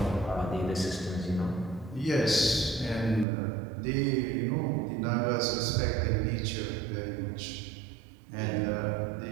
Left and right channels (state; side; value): drops out; left; at 3.2 s